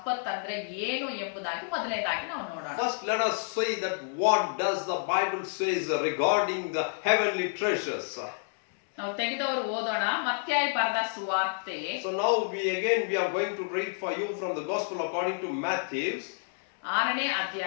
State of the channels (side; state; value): right; silent; 58 dB below the other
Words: ಅಂದ್ರೆ ಏನು ಎಂಬುದಾಗಿ ಮೊದಲನೇದಾಗಿ ನಾವು ನೋಡೋಣ. First let us say that what does the Bible says regarding the heavenly treasures. ನಾವು ತೆಗೆದವರು ಓದೋಣ. ಮತ್ತಾಯ ಬರೆದ ಸುವಾರ್ತೆ. So now we are going to read for you from the Gospel according to Matthew, 6ನೇ